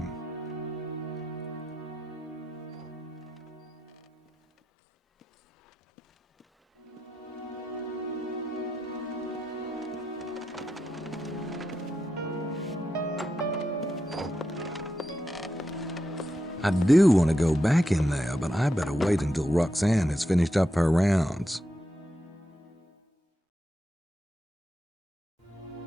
I do want to go back in there, but I better wait until Roxanne has finished up her rounds.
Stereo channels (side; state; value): both; normal; correlation 0.86